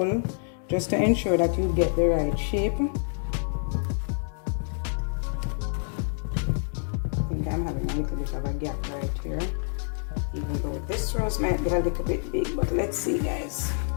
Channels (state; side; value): silent; right; 60 dB below the other